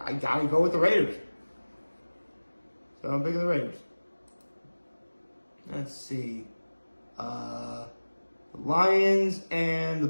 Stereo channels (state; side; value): inverted; both; correlation -1.00